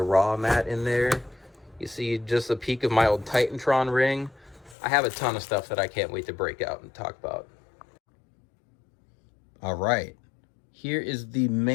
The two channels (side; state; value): right; drops out; at 4.8 s